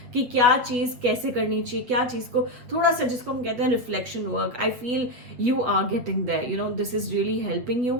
कि क्या चीज कैसे करनी चाहिए, क्या चीज को थोड़ा सा, जिसको हम कहते हैं reflection work. I feel you are getting there, this is really helping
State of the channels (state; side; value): late; left; 8.4 ms